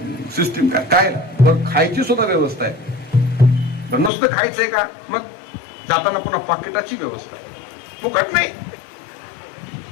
सिस्टीम काय, काय बरं. खायची सुद्धा व्यवस्था आहे. नुसतं खायचंय का, मग जाताना पुन्हा पाकिटाची व्यवस्था आहे. फुकट नाही.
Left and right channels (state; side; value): drops out; right; at 4.1 s